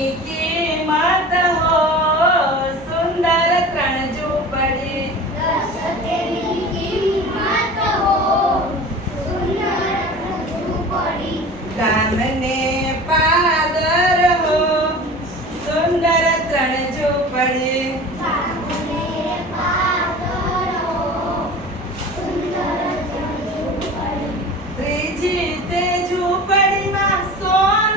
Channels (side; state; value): both; normal; correlation 0.37